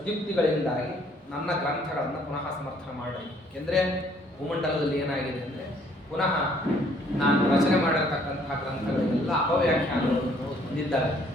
ನನ್ನ ಗ್ರಂಥಗಳನ್ನು ಪುನಃ ಸಮರ್ಥನೆ ಮಾಡ್ರಿ. ಏಕೆಂದರೆ ಭೂಮಂಡಲದಲ್ಲಿ ಏನಾಗಿದೆ ಅಂದರೆ ಪುನಃ ನಾನು ರಚನೆ ಮಾಡಿರ್ತಕ್ಕಂತಹ ಗ್ರಂಥಗಳೆಲ್ಲ ಅಪವ್ಯಾಖ್ಯಾನಗಳನ್ನು ಹೊಂದಿದ್ದಾರೆ.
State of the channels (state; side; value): normal; both; correlation 0.63